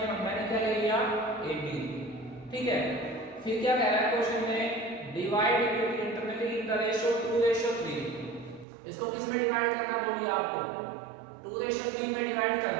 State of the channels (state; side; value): drops out; left; at 8.7 s